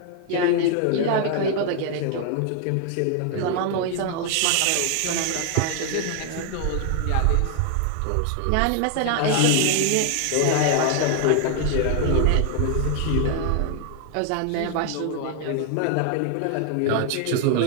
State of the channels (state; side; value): different; both; correlation 0.00